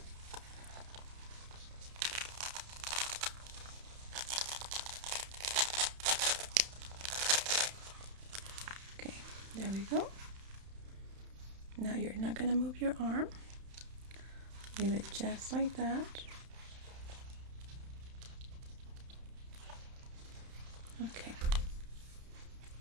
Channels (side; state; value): left; late; 31 ms